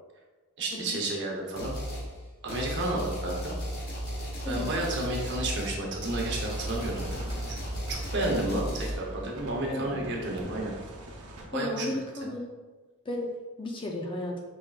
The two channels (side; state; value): both; normal; correlation 0.42